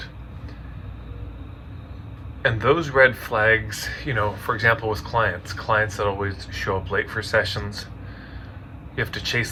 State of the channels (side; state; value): both; identical; correlation 1.00